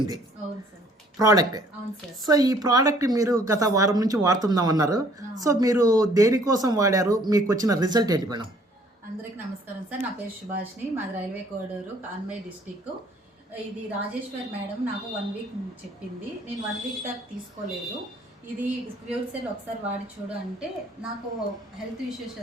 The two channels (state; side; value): normal; both; correlation 0.59